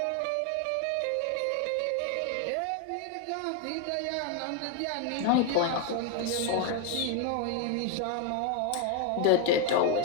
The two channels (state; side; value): different; both; correlation 0.01